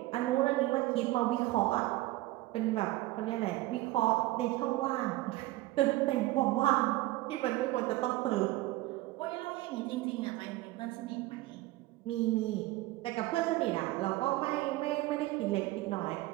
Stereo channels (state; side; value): quieter; left; 18.2 dB